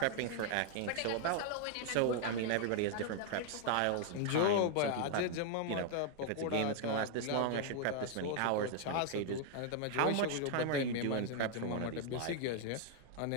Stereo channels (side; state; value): both; different; correlation 0.00